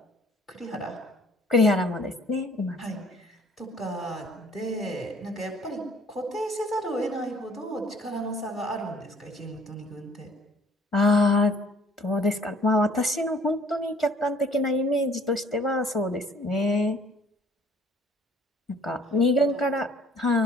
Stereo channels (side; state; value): both; normal; correlation 0.56